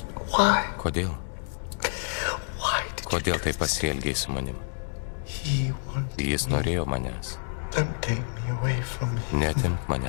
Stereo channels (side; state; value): right; silent; digital silence